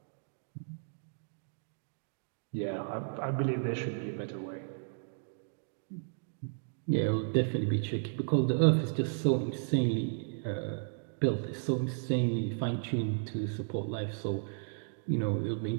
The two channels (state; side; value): silent; left; digital silence